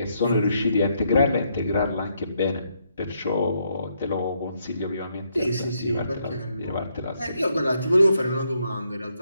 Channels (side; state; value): both; inverted; correlation -0.75